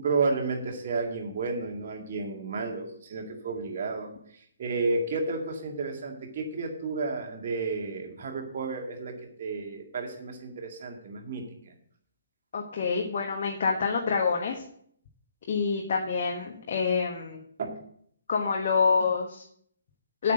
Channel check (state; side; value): inverted; both; correlation -0.67